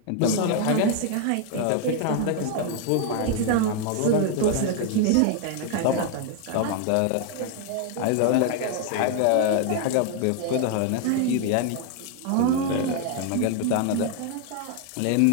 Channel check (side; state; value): both; different; correlation 0.01